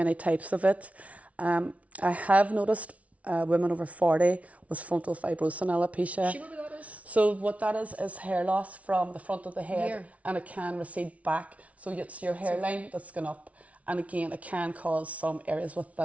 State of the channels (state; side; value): late; left; 0.066 ms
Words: types of it. I have noticed women over 40 with frontal fibrosis and alopecia. So what that is hair loss from the front of the head, and it can recede back. So it's your hairline that's going up. And again, it can cause some areas